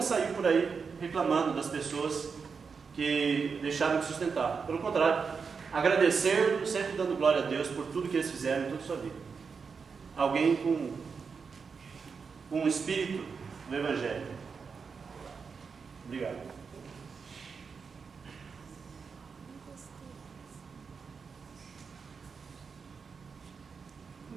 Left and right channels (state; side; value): quieter; left; 5.5 dB